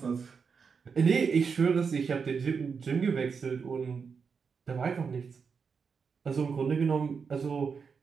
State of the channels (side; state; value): left; quieter; 5.8 dB